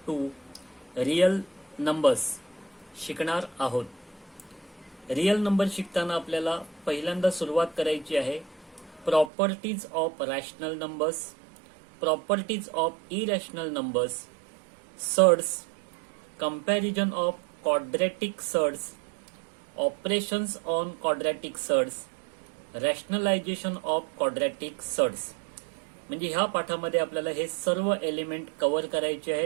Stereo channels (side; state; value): left; drops out; at 9.3 s